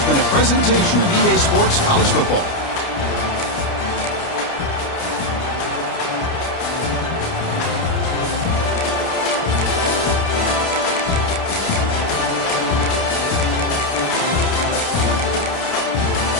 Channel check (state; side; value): late; right; 29 ms